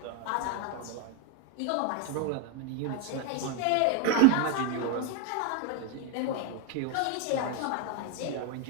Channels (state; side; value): different; both; correlation 0.01